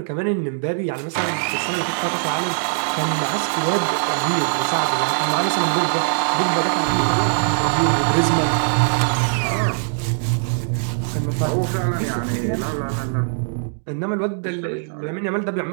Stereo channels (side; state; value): left; silent; digital silence